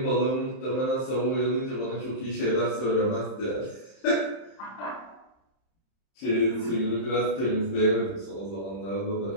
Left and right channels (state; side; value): late; right; 31 ms